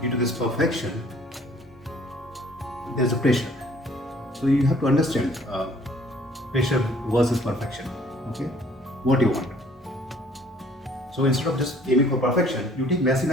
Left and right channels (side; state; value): both; normal; correlation 0.57